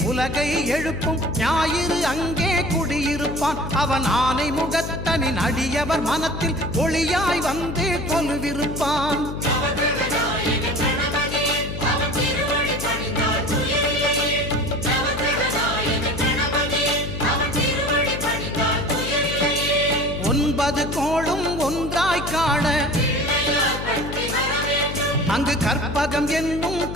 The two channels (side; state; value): left; noise; hum, 7 dB below the sound